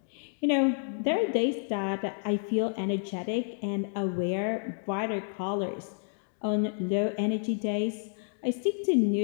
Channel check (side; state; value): right; silent; digital silence